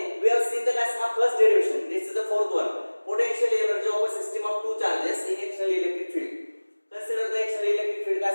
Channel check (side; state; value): both; inverted; correlation -1.00